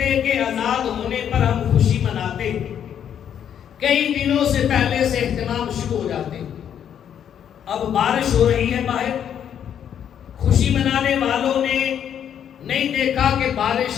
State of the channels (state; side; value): quieter; right; 9.1 dB